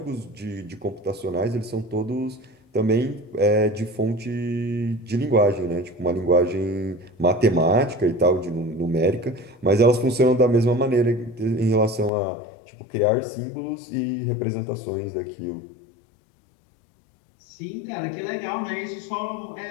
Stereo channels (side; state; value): right; drops out; at 12.1 s